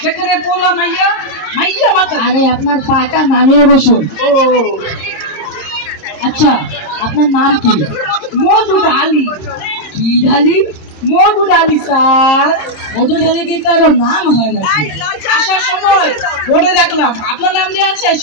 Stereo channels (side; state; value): right; late; 26 ms